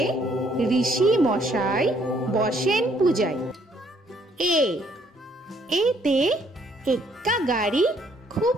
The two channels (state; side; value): normal; both; correlation 0.66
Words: ঋষি মশাই বসেন পূজায়। এ এতে এক্কা গাড়ি খুব